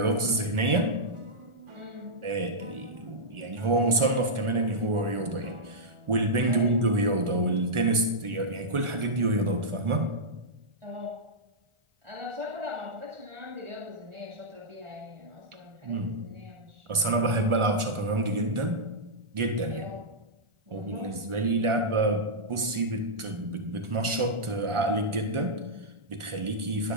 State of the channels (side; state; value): left; late; 1.4 ms